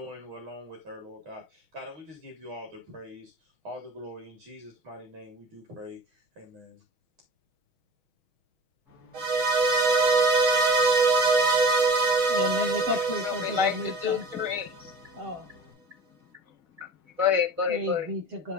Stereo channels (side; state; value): left; late; 6.3 ms